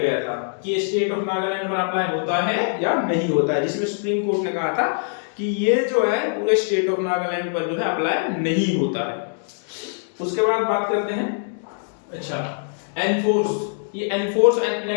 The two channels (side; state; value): right; silent; digital silence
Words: था कि स्टेट ऑफ नागालैंड पर अप्लाई होता है या नहीं होता है, जिसमें सुप्रीम कोर्ट ने कहा था कि ये जो है पूरे स्टेट ऑफ नागालैंड पर जो है अप्लाई नहीं होता है। उसके बाद बात करते हैं, अच्छा, एनफोर्स। ये एनफोर्स एंड